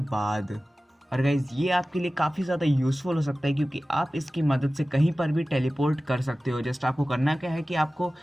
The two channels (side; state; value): both; normal; correlation 0.96